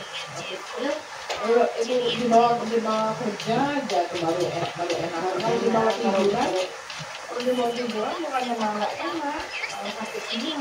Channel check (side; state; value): both; identical; correlation 1.00